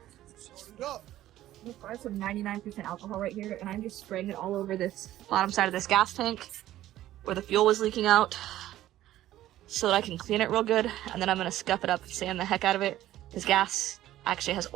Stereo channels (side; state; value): left; quieter; 13.9 dB